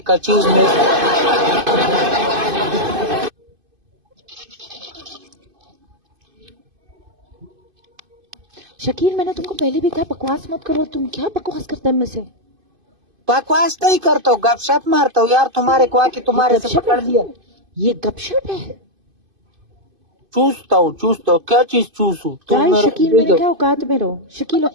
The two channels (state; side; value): late; left; 2.5 ms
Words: चीज में शकील मैंने तुमको पहले भी कहा बकवास मत करो, तुम क्या बकवास करते हैं मुझसे? बकवास नहीं करता हूँ, गपशप मारता हूँ यार। तुम्हारे को आके तुम्हारे से पकड़ लिया। ये गपशप है? चूसता हूँ क्या चीज चूसू? तुम शकील मेरे क्या औकात में रहो, शकील